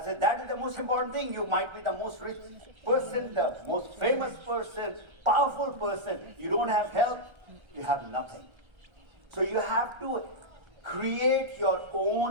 said, that is the most important thing. You might be the most rich person, the most famous person, powerful person. You don't have health, you have nothing. So you have to create your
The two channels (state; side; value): late; left; 1.3 ms